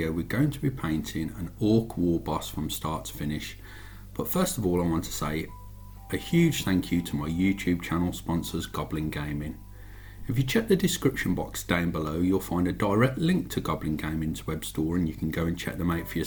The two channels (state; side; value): identical; both; correlation 1.00